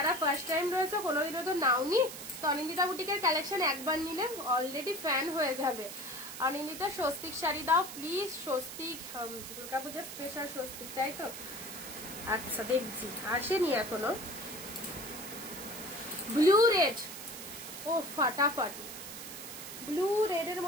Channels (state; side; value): noise; right; hiss, 10 dB below the sound